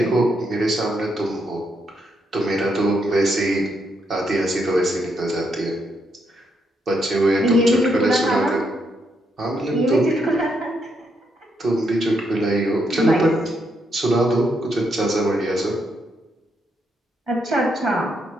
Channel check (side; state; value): both; normal; correlation 0.78